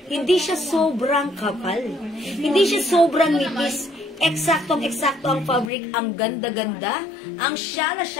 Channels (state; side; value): drops out; right; at 5.7 s